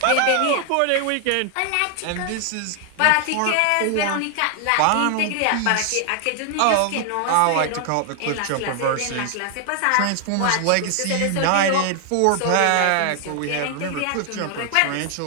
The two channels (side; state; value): both; different; correlation 0.00